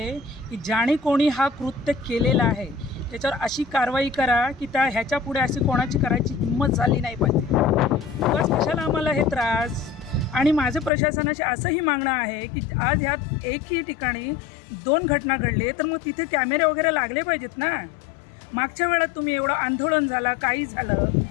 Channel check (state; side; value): drops out; right; at 10.9 s